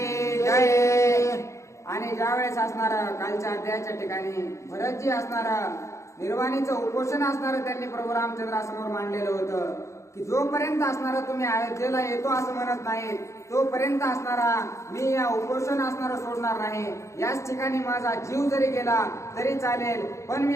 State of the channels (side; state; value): right; late; 0.14 ms